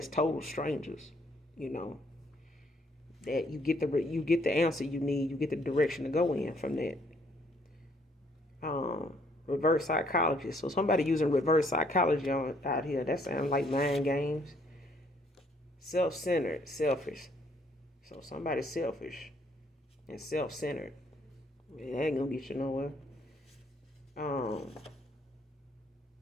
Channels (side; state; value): both; normal; correlation 0.66